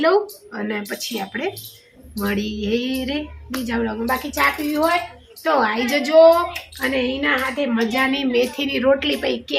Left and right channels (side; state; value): both; identical; correlation 1.00